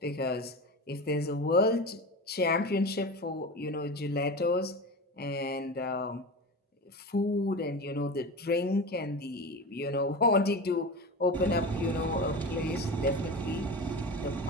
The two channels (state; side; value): normal; both; correlation 0.27